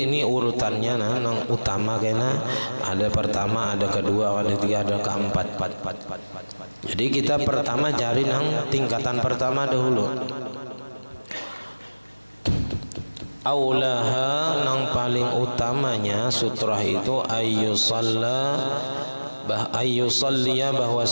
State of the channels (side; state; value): both; inverted; correlation -1.00